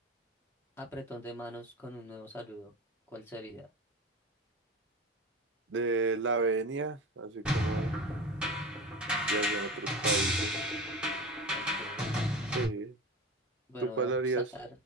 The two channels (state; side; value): normal; both; correlation 0.29